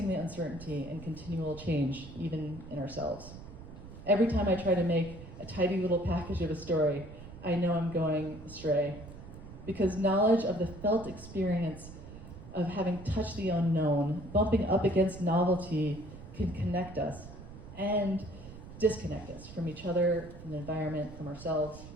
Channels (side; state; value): right; noise; rumble, 15 dB below the sound